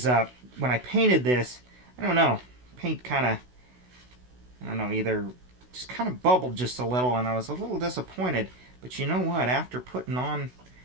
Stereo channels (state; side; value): late; left; 16 ms